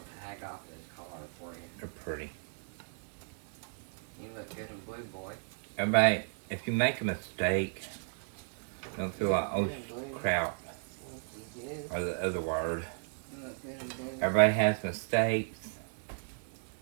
tag off of his collar for you. They're pretty. You look good in blue, boy. Everybody, if you make a mistake, don't feel like, oh crap, or the other word. You look good in blue. Everybody has mistakes.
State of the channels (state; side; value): silent; left; 55 dB below the other